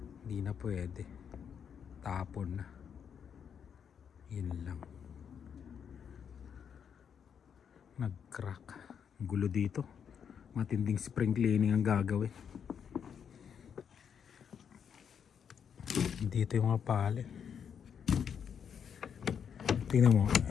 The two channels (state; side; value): quieter; right; 7.6 dB